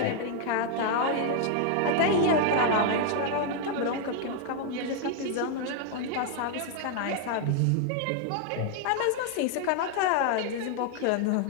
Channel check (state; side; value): different; both; correlation 0.00